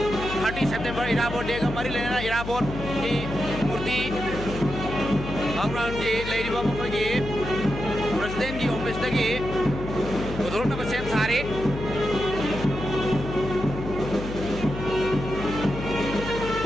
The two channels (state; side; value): noise; left; hum, 8 dB below the sound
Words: 30 सितंबर इराबोट day का मरी लेना इराबोट की मूर्ति थाउ ग्राउंड की लेरिबा मखोगी प्रेसिडेंट की ऑफिस तकी उधोरना सेम सारे